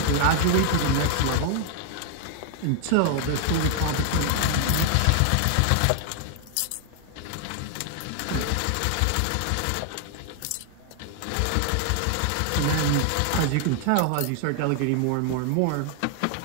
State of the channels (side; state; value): both; different; correlation 0.00